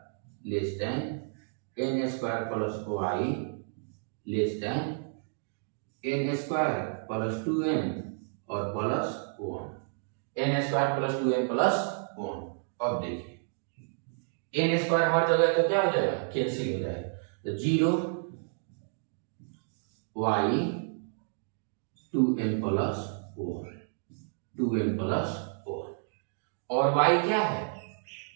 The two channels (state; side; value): silent; left; digital silence